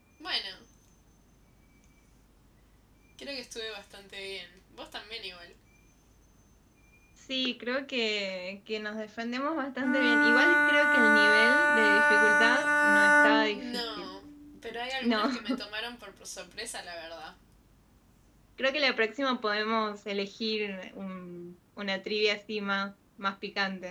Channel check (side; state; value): both; identical; correlation 1.00